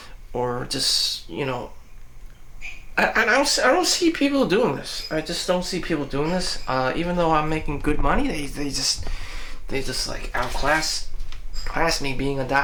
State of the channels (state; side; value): identical; both; correlation 1.00